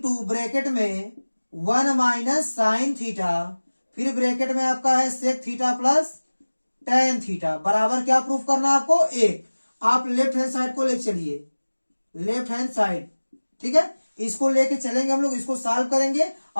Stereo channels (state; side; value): inverted; both; correlation -1.00